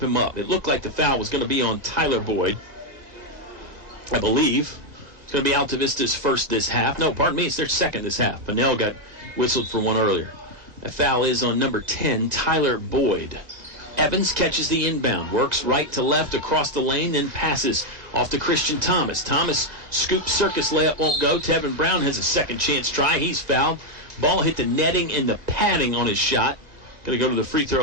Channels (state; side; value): late; left; 1.8 ms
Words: him up. It looked like the foul was going to be on Tyler Boyd, I believe. It's going to be Altavista's first this half. No, pardon me, it's their second this half. Pennell got whistled for one earlier. A foul is on number 10, Tyler Boyd. Evans catches the inbound, works right to left across the lane, then passes off to Christian Thomas. Thomas scoop circus layup won't go. Tevin Brown has a second chance try. He's fouled. Ball hit the netting and the padding on his shot. Going to go to the free